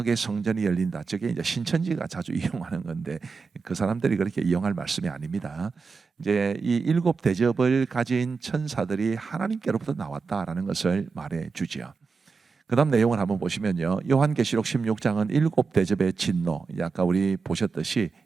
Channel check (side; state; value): left; quieter; 4.8 dB